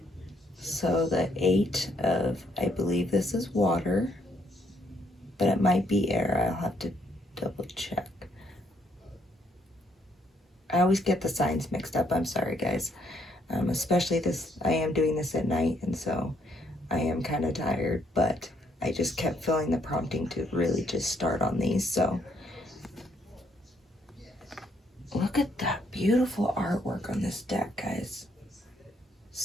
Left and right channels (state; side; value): normal; both; correlation 0.70